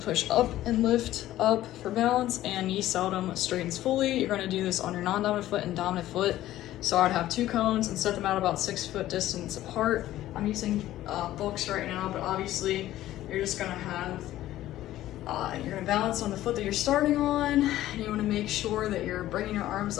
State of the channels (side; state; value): right; quieter; 14.3 dB